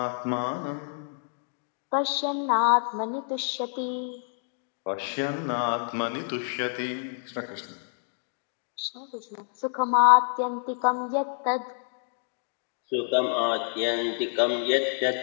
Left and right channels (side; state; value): right; silent; 59 dB below the other